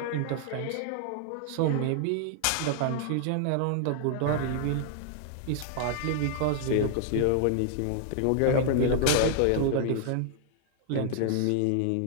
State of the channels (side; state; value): both; different; correlation -0.01